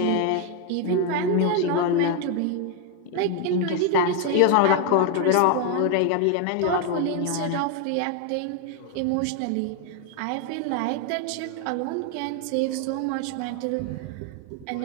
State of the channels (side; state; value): both; different; correlation 0.01